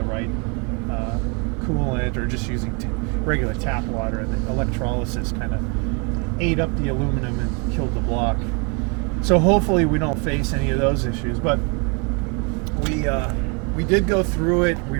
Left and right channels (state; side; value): quieter; left; 32.5 dB